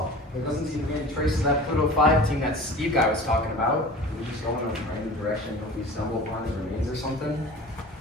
there doesn't seem to be any trace of that Pluto 5 team that Steve guy was talking about. We just go in a random direction, hope we stumble upon his remains or something.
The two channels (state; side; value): normal; both; correlation 0.39